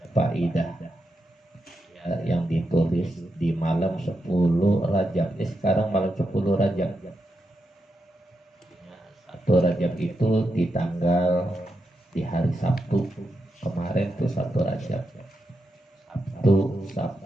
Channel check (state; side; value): normal; both; correlation 0.86